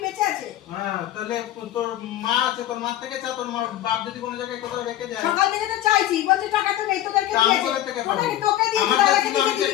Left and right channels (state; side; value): quieter; right; 13.1 dB